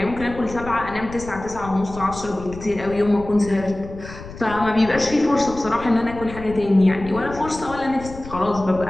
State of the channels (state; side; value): noise; left; rumble, 13 dB below the sound